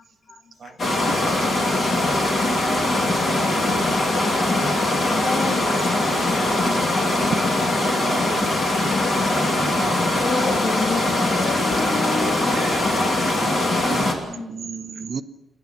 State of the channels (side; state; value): both; normal; correlation 0.82